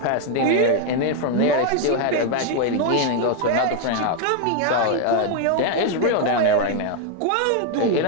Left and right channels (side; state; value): both; different; correlation 0.00